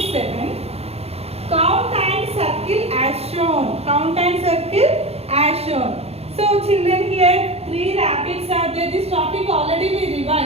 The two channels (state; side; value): late; left; 0.29 ms